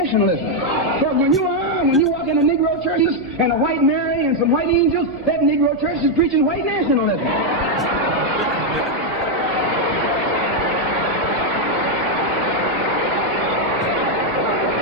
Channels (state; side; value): normal; both; correlation 0.00